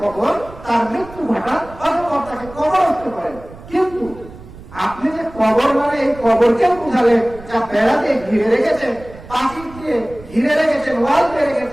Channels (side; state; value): right; noise; rumble, 18 dB below the sound